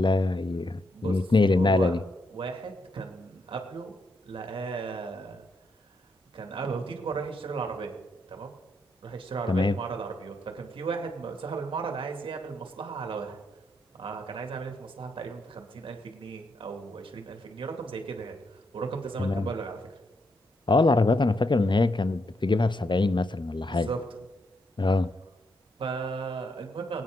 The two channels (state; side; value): normal; both; correlation 0.79